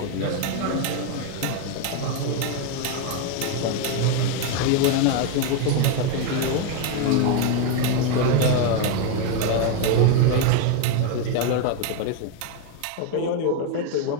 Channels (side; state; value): both; different; correlation 0.01